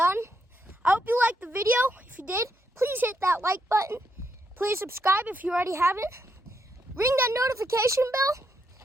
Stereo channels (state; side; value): normal; both; correlation 0.78